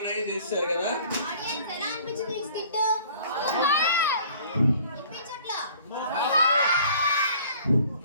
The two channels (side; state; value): both; inverted; correlation -0.52